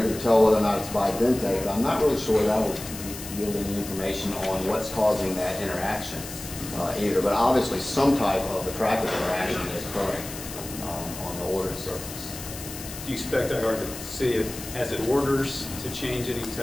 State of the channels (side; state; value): left; noise; hiss, 11 dB below the sound